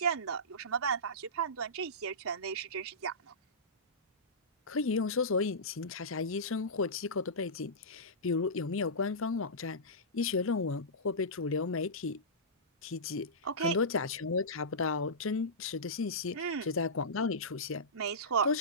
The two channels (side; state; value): both; normal; correlation -0.17